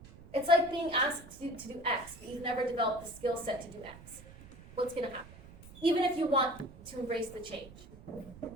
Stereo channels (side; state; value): right; noise; rumble, 19 dB below the sound